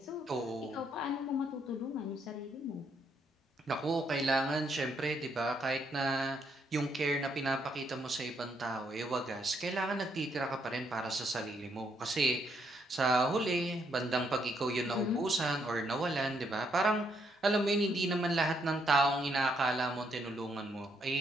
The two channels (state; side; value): normal; both; correlation 0.74